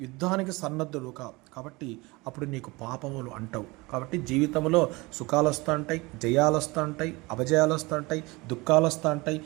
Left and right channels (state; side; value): quieter; left; 23.7 dB